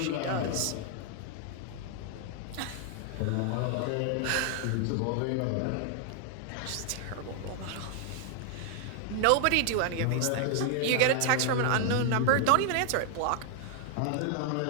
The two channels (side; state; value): both; different; correlation 0.00